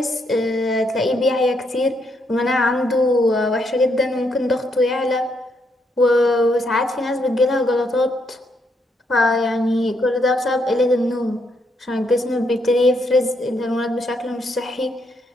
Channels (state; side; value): normal; both; correlation 0.76